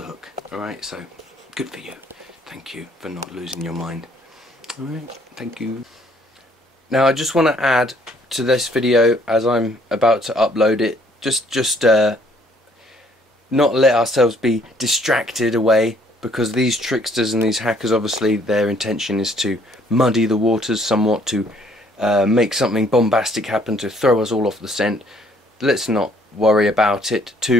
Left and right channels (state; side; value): normal; both; correlation 0.63